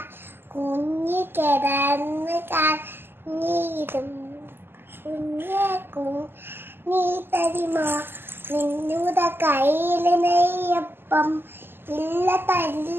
കുഞ്ഞി കിടന്ന് കഞ്ഞിരും കുഞ്ഞെ നീ തരുമോ നിന്നുടെ കയ്യില് നെയ്യപ്പം ഇല്ല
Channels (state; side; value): late; left; 0.10 ms